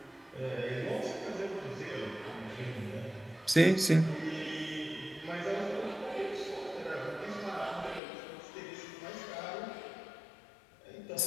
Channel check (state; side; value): drops out; right; at 8.0 s